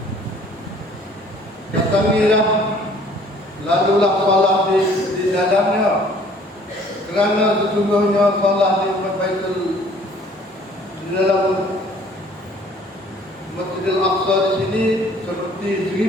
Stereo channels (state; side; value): normal; both; correlation 0.55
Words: Datangilah, lalulah salat di dalamnya, kerana sesungguhnya salat di Baitul di dalam Masjidil Aqsa di sini seperti